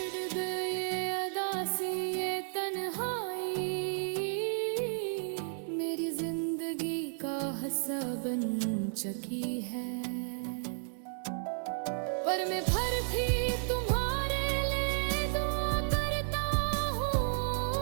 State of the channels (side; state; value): left; silent; digital silence